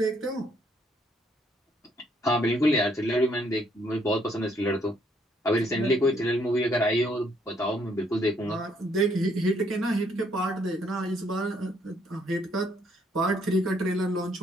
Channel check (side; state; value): both; normal; correlation 0.69